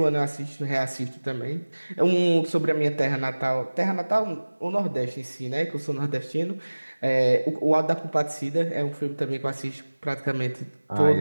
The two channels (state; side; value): inverted; both; correlation -1.00